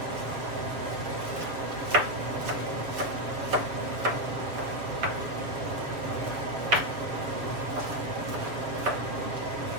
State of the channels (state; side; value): late; left; 6.9 ms